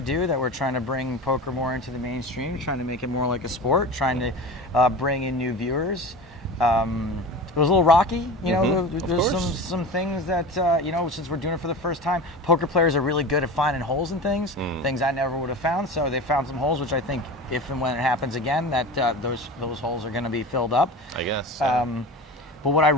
that we're trying to bring poker more into the mainstream, trying to make it more like a sport, trying to bring in new viewers. It was a little rocky, you know. There's some things that since we're doing it for the first time, poker players are really good at finding holes in things I never would have found. So they found some holes, which I think if and when it happens again, that those holes are going to be filled up. I guess. But what I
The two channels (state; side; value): normal; both; correlation 0.31